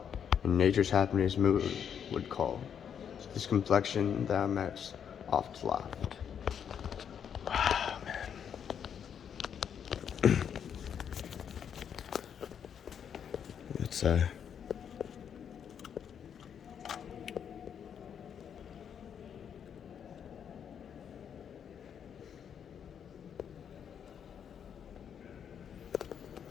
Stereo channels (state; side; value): quieter; right; 8.1 dB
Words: and nature's happiness mood would call. This complexion thou metst oft laughed. Wow, man. It's